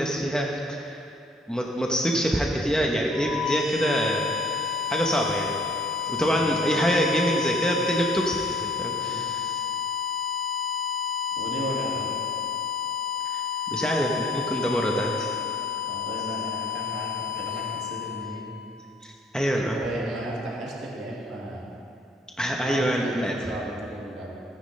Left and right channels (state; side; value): normal; both; correlation 0.56